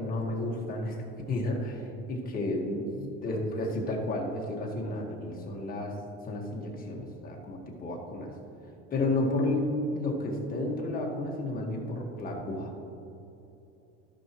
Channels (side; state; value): both; normal; correlation 0.40